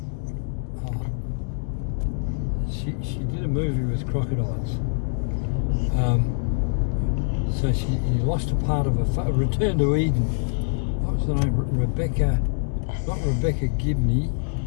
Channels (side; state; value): right; silent; digital silence